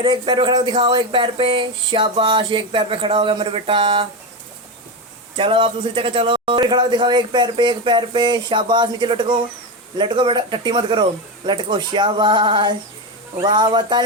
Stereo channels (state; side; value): normal; both; correlation 0.15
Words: एक पैर पे खड़ा हो दिखाओ, एक पैर पे, शाबाश। एक पैर पे खड़ा हो गया मेरे बेटा। चलो आप दूसरी जगह चलो, फिर खड़ा हो दिखाओ, एक पैर पे, एक पैर पे, शाबाश। नीचे लटको, लटको बेटा, टट्टी मत करो, लटको, शाबाश। वाह वाह,